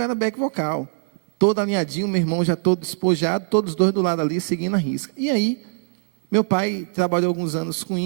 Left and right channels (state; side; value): silent; left; digital silence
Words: back vocal. Todo alinhadinho, meu irmão já todo despojado, todos os dois do lado ali, seguindo a risca. E aí, meu pai trabalhou alguns anos com